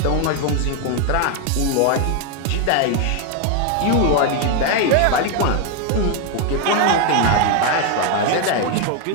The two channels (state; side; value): different; both; correlation 0.01